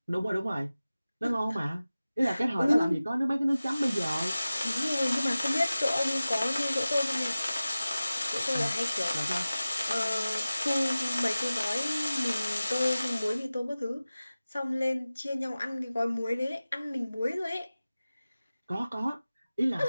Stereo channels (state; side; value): inverted; both; correlation -0.97